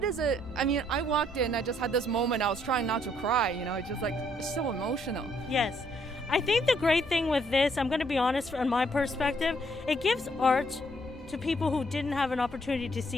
is it? I mean, I walked in, I just had this moment, I was trying not to cry, it's just like, it's so emotional. Yes. I think the great thing with this, I'm going to be honest from my perspective, it gives art to people who didn't have an opportunity to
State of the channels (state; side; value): normal; both; correlation 0.68